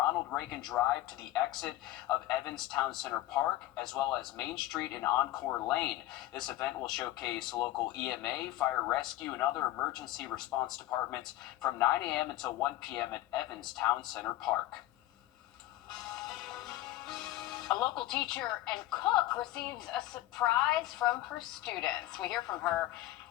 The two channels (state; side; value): quieter; right; 15.5 dB